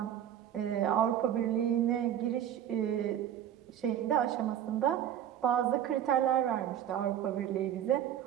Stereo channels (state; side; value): quieter; left; 10.4 dB